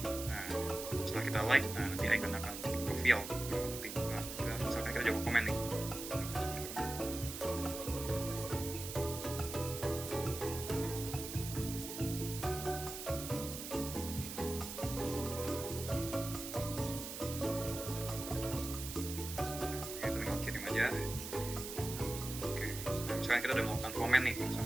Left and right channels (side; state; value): right; noise; hiss, 8 dB below the sound